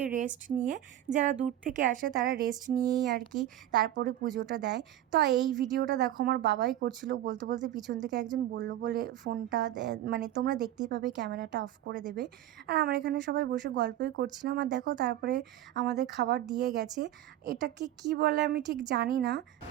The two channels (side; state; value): left; quieter; 12.8 dB